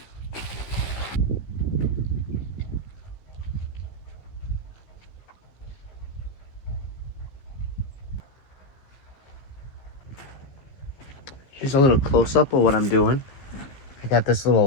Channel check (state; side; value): late; right; 15 ms